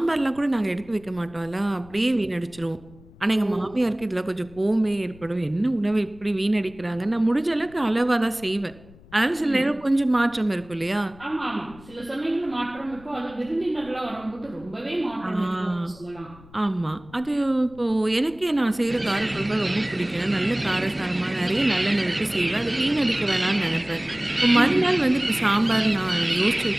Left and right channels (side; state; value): left; noise; rumble, 22 dB below the sound